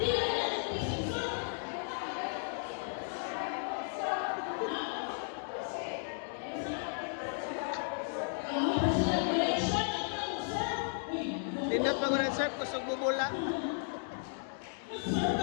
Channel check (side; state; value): right; silent; digital silence